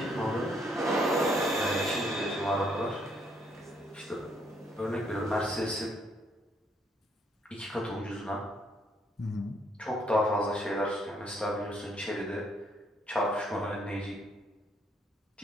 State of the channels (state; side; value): normal; both; correlation 0.69